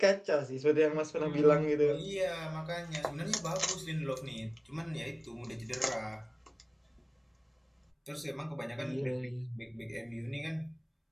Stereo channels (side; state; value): both; identical; correlation 1.00